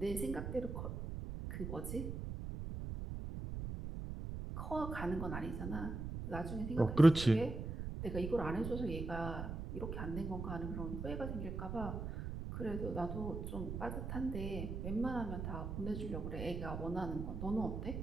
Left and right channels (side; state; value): right; noise; rumble, 5 dB below the sound